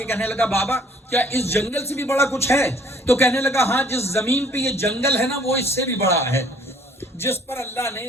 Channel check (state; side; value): normal; both; correlation 0.59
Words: کہنے لگا بابا کیا اس جنگل سے بھی بڑا کچھ ہے؟ تو کہنے لگا ہاں، جس زمین پہ یہ جنگل ہے نا وہ اس سے بھی بڑا ہے، جس پر اللہ